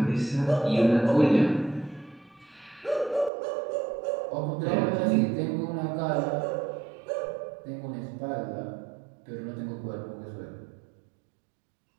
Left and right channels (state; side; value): drops out; left; at 3.3 s